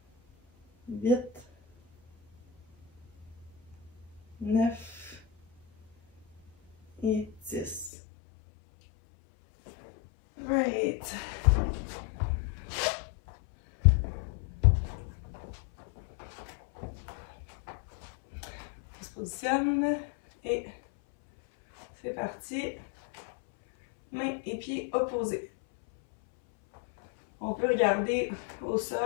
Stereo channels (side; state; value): right; drops out; at 7.9 s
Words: 8, 9 et 10. Right. On se positionne et c'est parti. Mains et pieds opposés. On peut regarder au